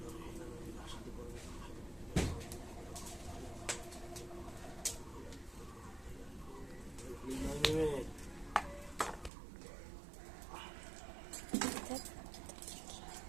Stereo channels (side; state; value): left; drops out; at 9.3 s